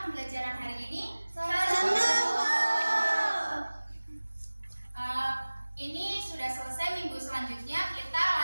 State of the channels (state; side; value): inverted; both; correlation -1.00